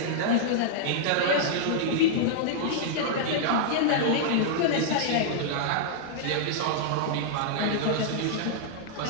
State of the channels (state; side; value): different; both; correlation -0.02